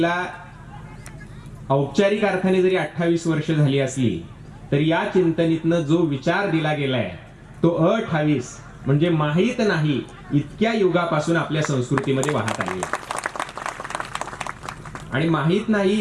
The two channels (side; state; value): both; identical; correlation 1.00